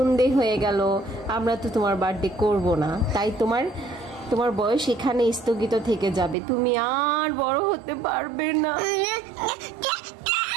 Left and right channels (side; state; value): left; drops out; at 6.4 s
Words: হয়ে গেল, আমরা তো তোমার বার্থডে করব না। তাই তোমার বয়স এখানে স্থগিত থেকে যাবে, তুমি আর বড় হতে পারবে না।